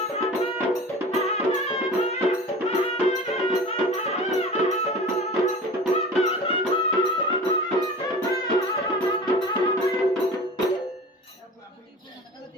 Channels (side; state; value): both; normal; correlation 0.37